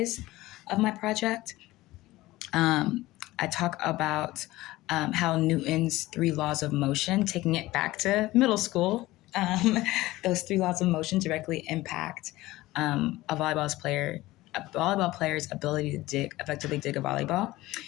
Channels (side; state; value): right; quieter; 18.0 dB